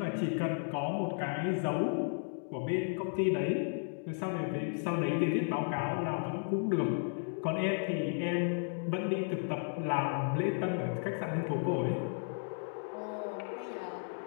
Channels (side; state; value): right; silent; 55 dB below the other